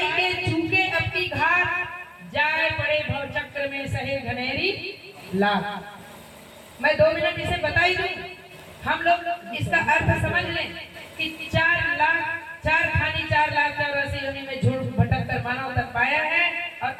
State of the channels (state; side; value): identical; both; correlation 1.00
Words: के चूके अब की घाट, जाए पड़े भव चक्र में सहे घनेरी लाख। मैं 2 मिनट इसे बताई दूं, हम लोग इसका अर्थ समझ लें कि 4 लाख 4,84,84 योनि में झूठ भटक कर मानव तक पाया है, और